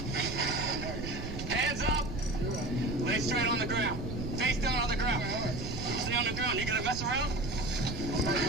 Hands up. Lay straight on the ground. Face down on the ground. Stay on the ground. You gonna mess around?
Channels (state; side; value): noise; right; rumble, 7 dB below the sound